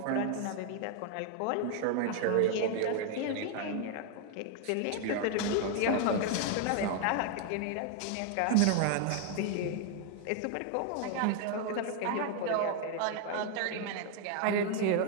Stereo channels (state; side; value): different; both; correlation 0.00